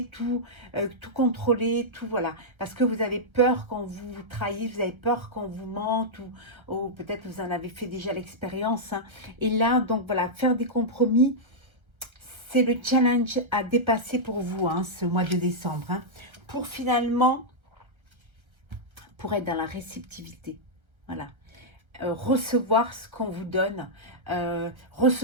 tout contrôler, tout voilà. Parce que vous avez peur qu'on vous trahisse, vous avez peur qu'on vous mente, ou peut-être vous en avez fait déjà l'expérience. Hein. Et là, donc voilà, faire des compromis, c'est le challenge à dépasser pour vous, hein, ce mois de décembre. Hein, pour finalement, pour être dans la réceptivité. Voilà. Recevoir ce qu'on vous donne,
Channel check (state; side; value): late; left; 1.2 ms